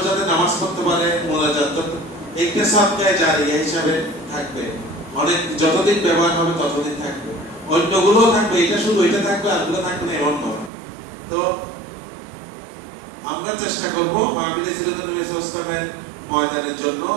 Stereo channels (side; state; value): left; drops out; at 10.7 s